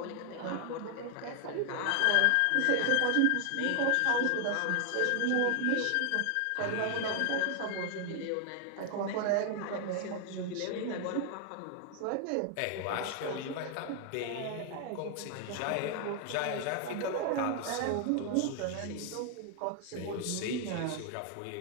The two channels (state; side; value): different; both; correlation 0.00